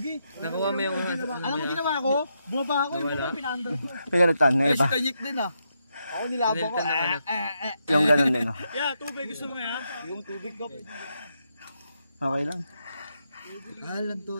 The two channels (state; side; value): inverted; both; correlation -0.82